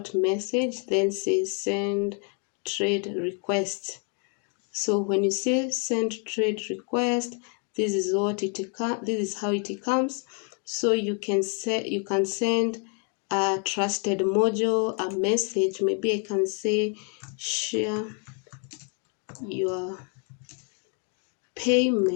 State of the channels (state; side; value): quieter; right; 39.4 dB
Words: message, then say send trade request. So when you say send trade request, this is how it comes. So you can send a Trusted Mojo a message. Maybe I can say share your